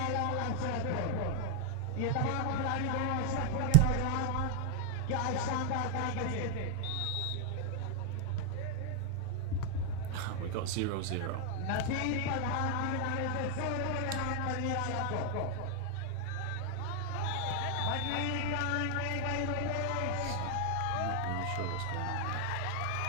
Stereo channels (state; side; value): different; both; correlation 0.01